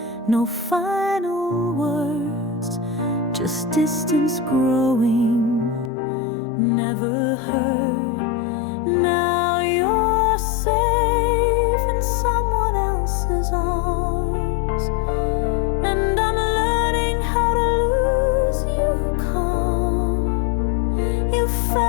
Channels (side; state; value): right; drops out; at 5.9 s